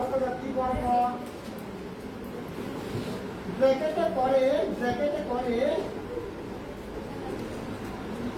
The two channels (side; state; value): both; identical; correlation 1.00